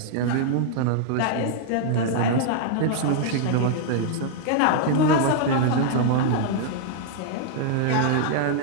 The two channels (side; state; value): both; different; correlation -0.01